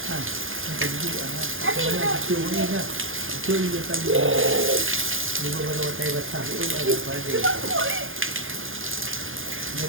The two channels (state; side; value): late; left; 0.59 ms